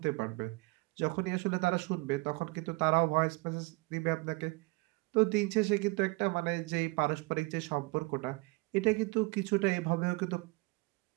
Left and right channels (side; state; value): left; quieter; 25.1 dB